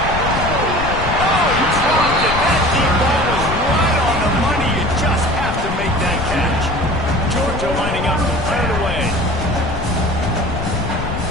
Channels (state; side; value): noise; left; rumble, 5 dB below the sound